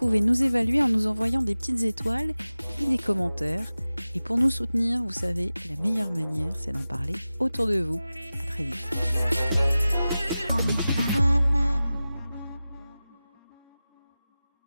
nous évaluer en nous envoyant des petites étoiles et des commentaires. Et pour nous soutenir, vous savez, la meilleure manière, c'est d'en parler autour de vous. À très vite.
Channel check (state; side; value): inverted; both; correlation -0.96